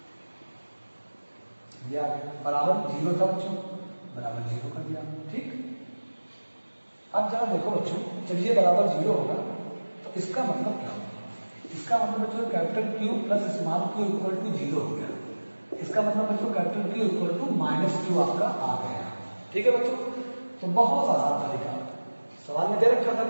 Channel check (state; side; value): inverted; both; correlation -1.00